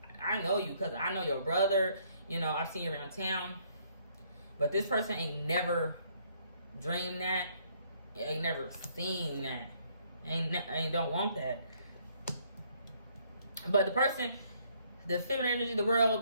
I know you because I know your brother. You know, I've seen you around town. But this person ain't never dreamed that. Ain't never seen that. Ain't don't want that. But the person, the feminine energy of the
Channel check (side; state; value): both; inverted; correlation -0.66